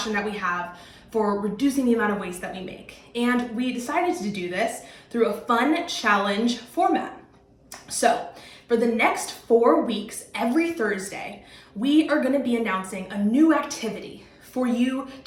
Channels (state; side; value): identical; both; correlation 1.00